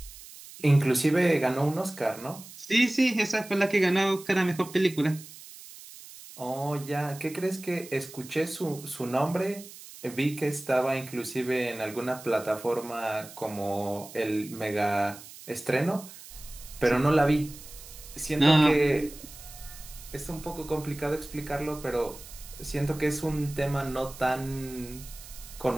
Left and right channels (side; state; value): right; noise; hiss, 17 dB below the sound